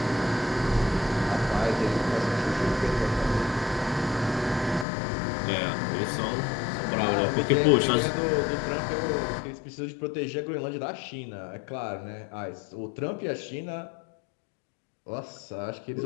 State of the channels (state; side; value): drops out; right; at 4.9 s